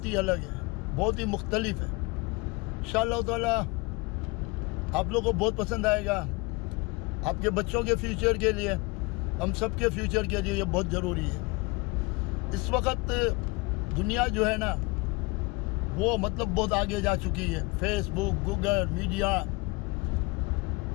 ही अलग है, बहुत ही मुख्तलिफ है। इंशाअल्लाह ताला आप लोगों को बहुत पसंद आएगा। आपके बच्चों के फ्यूचर के लिए, हम सब के फ्यूचर के लिए ये बहुत ज़रूरी है। इस वक्त दुनिया जो है ना वो मतलब बहुत आगे जा चुकी है। फेसबुक, गूगल, मीडिया,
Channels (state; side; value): quieter; right; 25.9 dB